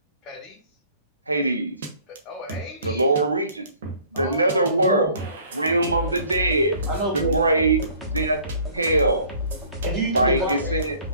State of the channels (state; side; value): inverted; both; correlation -0.55